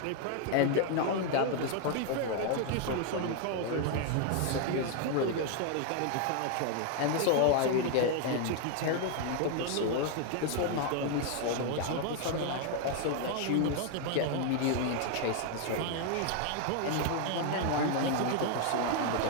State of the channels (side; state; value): both; different; correlation 0.00